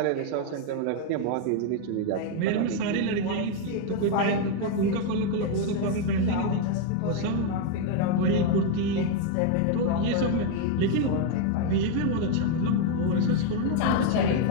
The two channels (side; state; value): both; different; correlation 0.01